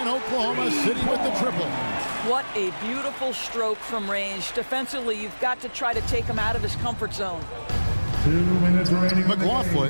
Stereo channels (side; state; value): both; inverted; correlation -1.00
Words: Oklahoma City with the triple. What a beautiful stroke from range. Defensively, you've got to try to take him out of his comfort zone. 2 minutes remaining. McLaughlin,